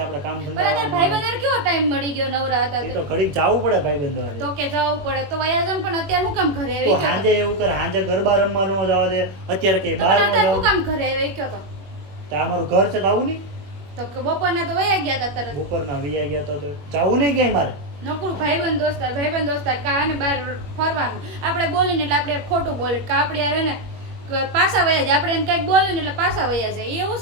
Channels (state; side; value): late; left; 21 ms